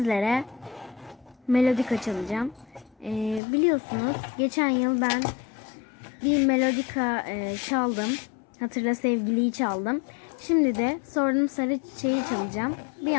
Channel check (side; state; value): right; drops out; at 3.4 s